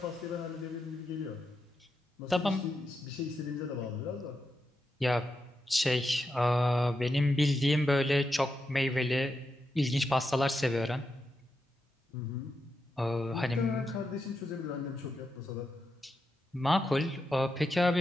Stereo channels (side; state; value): both; normal; correlation 0.86